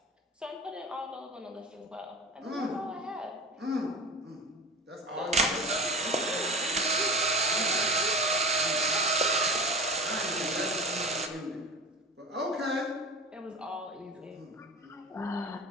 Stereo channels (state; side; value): normal; both; correlation 0.34